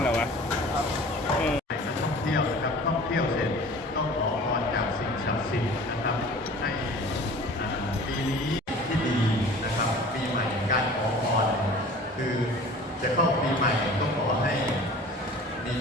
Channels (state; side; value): normal; both; correlation 0.44